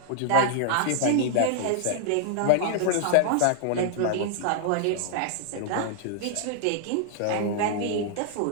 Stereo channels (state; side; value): different; both; correlation -0.01